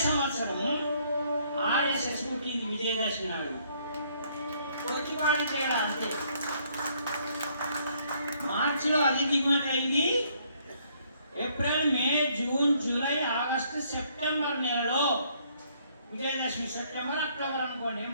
సంవత్సరం ఆర్ఎస్ఎస్ పుట్టింది విజయదశమి నాడు. కొద్దిపాటి తేడా అంతే. మార్చిలో అది దిగుమతి అయింది. ఏప్రిల్, మే, జూన్, జూలై, ఆగస్టు, సెప్టెంబర్ నెలలో విజయదశమి, సెప్టెంబర్, అక్టోబర్ అనుకోండి,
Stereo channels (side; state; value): both; inverted; correlation -0.66